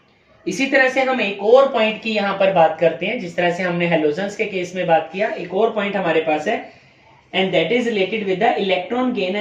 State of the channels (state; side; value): identical; both; correlation 1.00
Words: इसी तरह से हम एक और पॉइंट की यहां पर बात करते हैं, जिस तरह से हमने हेलोजन्स के केस में बात किया, एक और पॉइंट हमारे पास है, and that is related with the electron gain